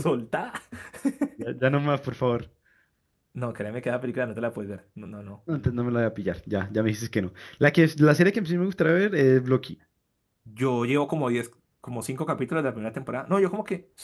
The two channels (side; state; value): both; identical; correlation 1.00